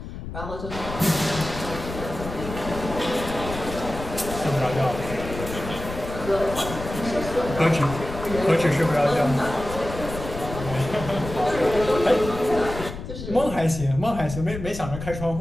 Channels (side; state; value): left; noise; rumble, 9 dB below the sound